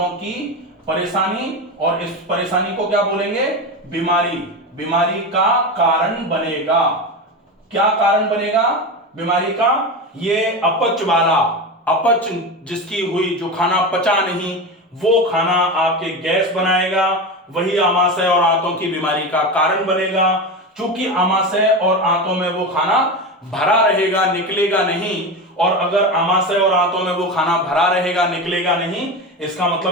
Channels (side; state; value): both; normal; correlation 0.22